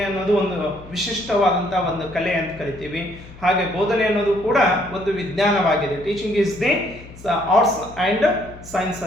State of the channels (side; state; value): left; noise; hum, 18 dB below the sound